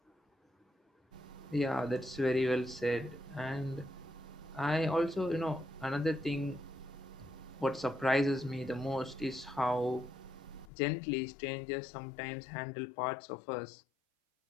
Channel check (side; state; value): right; drops out; at 10.7 s